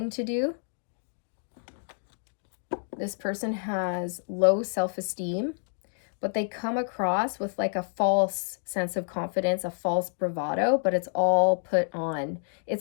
to do. This person has low self-esteem, but they come across with like a false sense of confidence, a false bravado, but it's all put on.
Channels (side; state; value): right; silent; digital silence